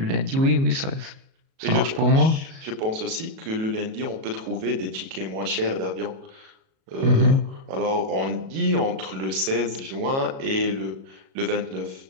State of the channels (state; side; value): late; left; 37 ms